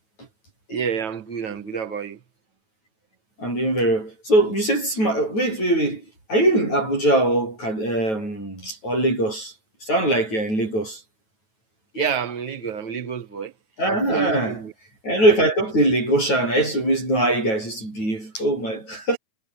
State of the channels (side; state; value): right; late; 9.2 ms